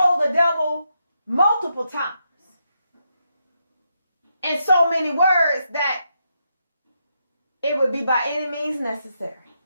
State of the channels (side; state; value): both; inverted; correlation -0.82